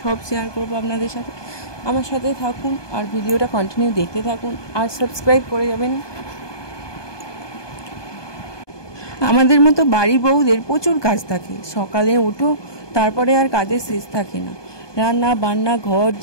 সব শেয়ার করব আপনাদের সাথে। আমার সাথে থাকুন আর ভিডিওটা কন্টিনিউ দেখতে থাকুন, আর সাবস্ক্রাইব করে যাবেন। আমাদের মতো বাড়ির বউদের প্রচুর কাজ থাকে। সকালে ওঠো, তারপরে আর কাজের শেষ থাকে না। রান্না বান্না, ঘর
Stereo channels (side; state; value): right; late; 1.2 ms